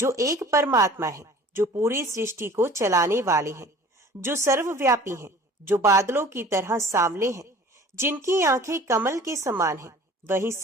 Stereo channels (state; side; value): normal; both; correlation 0.46